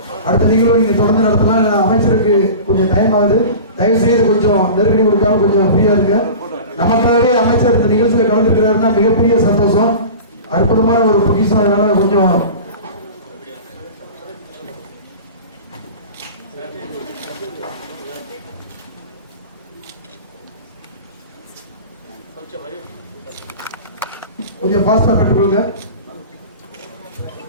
அடுத்த நிகழ்வு நீங்க தொடர்ந்து நடத்தலாம். அமைச்சருக்கு கொஞ்சம் டைம் ஆகுது, தயவு செய்து கொஞ்சம் நெருக்கடி கொடுக்காம கொஞ்சம் ஃப்ரீயா இருக்கு. நமக்காகவே அமைச்சர் இந்த நிகழ்ச்சியில கலந்துருக்கிறாருன்னா மிகப்பெரிய சந்தோஷம், அற்புதமான ஒரு பொக்கிஷம். அதனால கொஞ்சம் கொஞ்சம் ஃபாஸ்டா பெற்றுக்கொள்ளுங்க.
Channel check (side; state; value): both; inverted; correlation -0.35